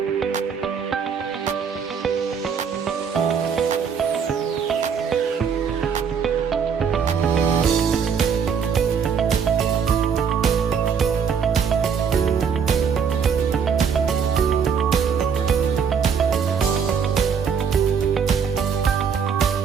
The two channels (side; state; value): left; quieter; 6.7 dB